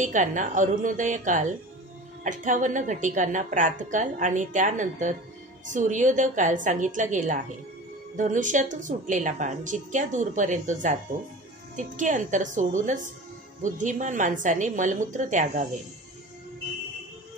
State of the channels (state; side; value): normal; both; correlation 0.36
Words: अरुणोदय काल, 58 घटिकांना प्रातकाल आणि त्यानंतर सूर्योदय काल सांगितला गेला आहे। धनुष्यातून सुटलेला बाण जितक्या दूरपर्यंत जातो तितके अंतर सोडूनच बुद्धिमान माणसाने मलमूत्र त्यागावे।